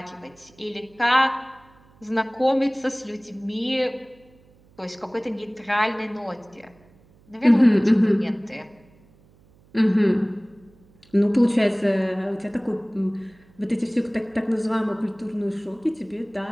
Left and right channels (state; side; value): noise; right; hum, 29 dB below the sound